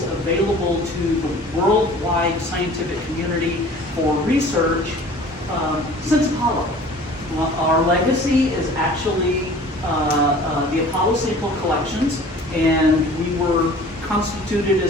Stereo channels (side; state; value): both; normal; correlation 0.46